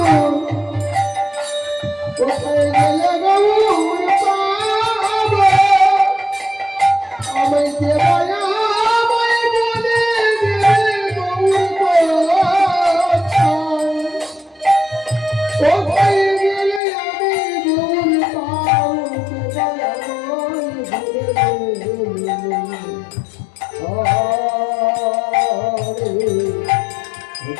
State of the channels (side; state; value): right; drops out; at 16.8 s